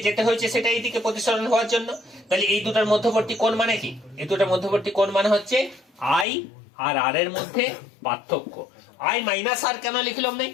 যেতে হয়েছে সেটা এইদিকে প্রতিসরণ হওয়ার জন্য। তাহলে এই দুটার মধ্যবর্তী কোণ মানে কি, এই দুটার মধ্যবর্তী কোণ মানে হচ্ছে আই আর আর এর মধ্যে পার্থক্য। আই মাইনাস আর কেন লিখলাম নাই?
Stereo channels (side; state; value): right; drops out; at 6.2 s